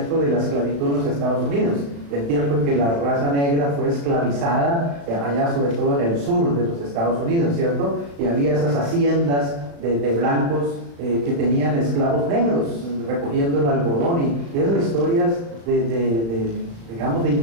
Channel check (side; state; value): left; late; 35 ms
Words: de la esclavitud en los Estados Unidos, del tiempo en que la raza negra fue esclavizada, allá sobre todo en el sur de los Estados Unidos, ¿cierto? Y había esas haciendas de blancos que tenían esclavos negros recogiendo el algodón y esas historias digamos, de